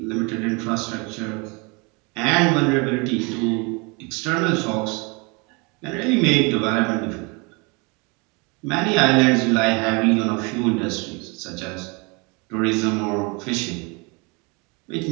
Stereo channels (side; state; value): left; quieter; 29.7 dB